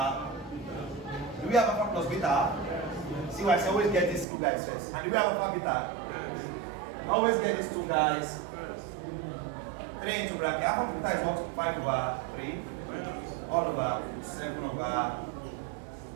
Do we have alpha plus beta? See why I always get these two guys first. And do we have alpha beta? Always get these two guys. 3 into bracket. Alpha beta is what? 5 over 3. All over 7 over.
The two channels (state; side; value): drops out; left; at 4.2 s